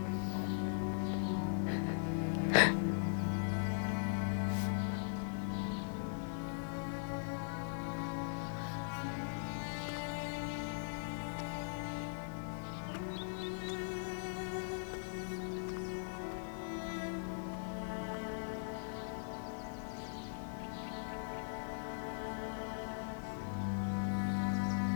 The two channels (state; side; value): silent; right; digital silence